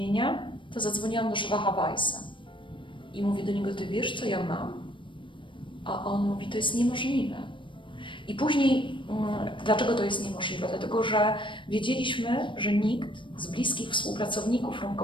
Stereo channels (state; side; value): late; right; 0.24 ms